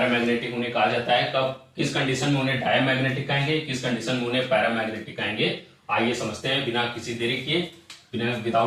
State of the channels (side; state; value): both; identical; correlation 1.00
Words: उन्हें कहा जाता है, कब किस कंडीशन में उन्हें डायमैग्नेटिक कहेंगे, किस कंडीशन में उन्हें पैरामैग्नेटिक कहेंगे। आइए समझते हैं बिना किसी देरी किए, बिना